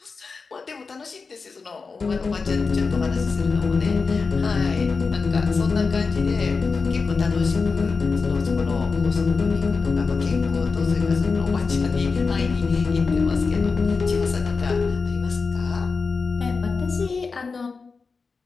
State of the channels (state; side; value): quieter; right; 4.6 dB